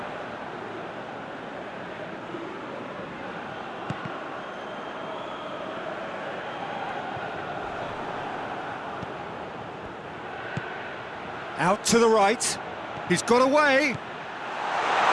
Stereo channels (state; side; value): identical; both; correlation 1.00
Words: Out to the right. He's got away.